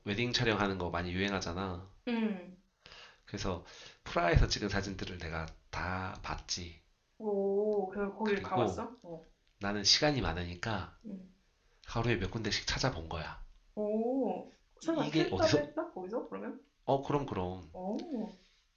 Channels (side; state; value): both; identical; correlation 1.00